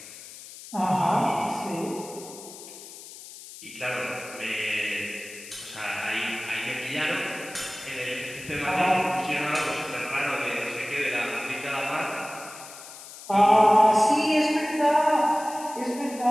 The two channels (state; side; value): noise; left; hiss, 15 dB below the sound